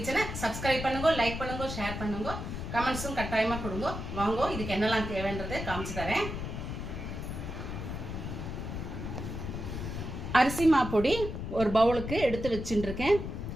சப்ஸ்கிரைப் பண்ணுங்க, லைக் பண்ணுங்க, ஷேர் பண்ணுங்க, கமெண்ட்ஸும் கட்டாயமாக கொடுங்க. வாங்க, இதுக்கு என்னெல்லாம் தேவைன்றதை காமிச்சு தரேன். அரிசி மாப்பொடி ஒரு பவுலுக்கு எடுத்து வச்சுட்டுருக்கேன்.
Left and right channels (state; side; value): noise; left; rumble, 6 dB below the sound